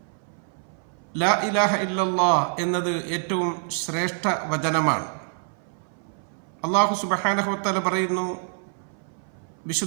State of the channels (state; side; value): silent; left; 58 dB below the other